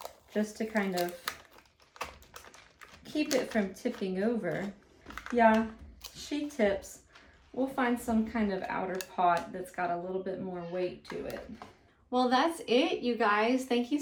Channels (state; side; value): identical; both; correlation 1.00